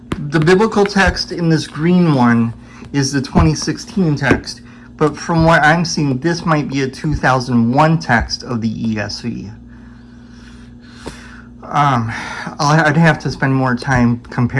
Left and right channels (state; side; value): identical; both; correlation 1.00